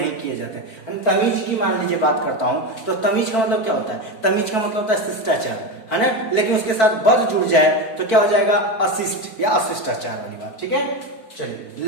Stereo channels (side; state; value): right; late; 4.5 ms